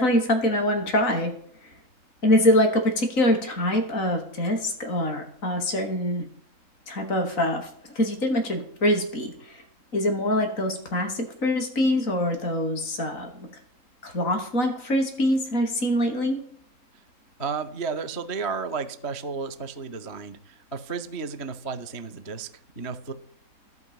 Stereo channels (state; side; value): late; right; 3.9 ms